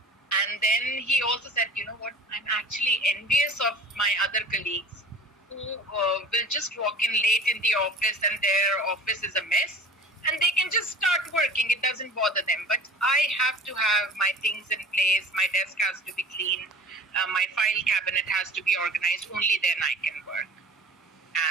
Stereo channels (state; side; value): normal; both; correlation 0.41